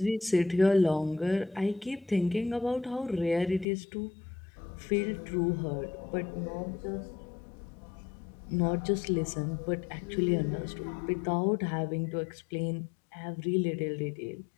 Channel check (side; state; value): right; drops out; at 3.7 s